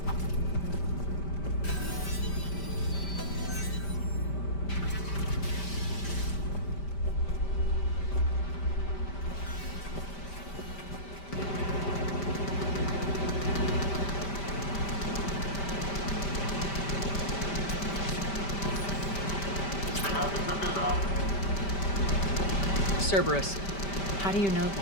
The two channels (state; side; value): late; right; 5.1 ms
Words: Cerberus. How do you know